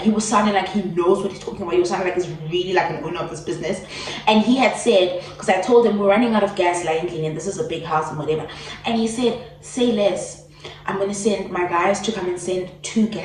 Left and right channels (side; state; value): both; identical; correlation 1.00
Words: he was sounding like he knows what he's talking about. He was sounding like he's really like an owner of this business. And he had said, because I told him we're running out of gas, lately, and this is a big house and whatever. And he said, say less. I'm gonna send my guys to come and send 2